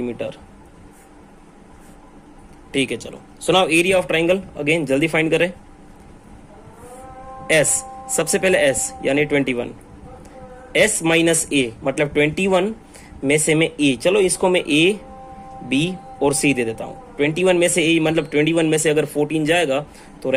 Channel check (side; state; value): both; identical; correlation 1.00